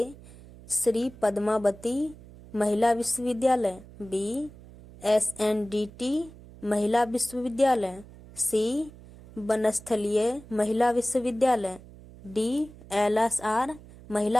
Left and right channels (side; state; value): right; noise; hum, 19 dB below the sound